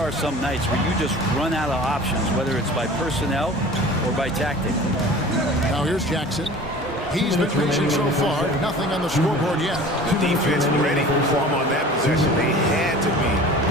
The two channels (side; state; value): both; normal; correlation 0.42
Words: some nights where you just run out of options, whether it's by personnel or by tactic. Now here's Jackson. He's been patient so far. Nothing on the scoreboard yet. The defense ready for him on that possession. They had to be,